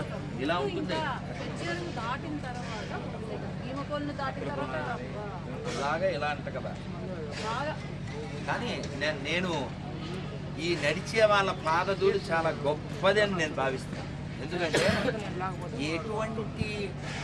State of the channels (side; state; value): both; identical; correlation 1.00